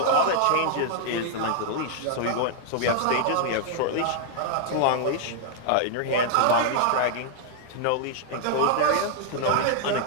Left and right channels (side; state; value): both; different; correlation -0.01